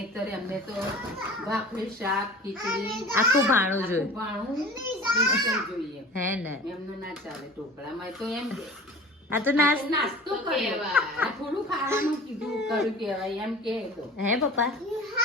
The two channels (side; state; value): both; normal; correlation 0.40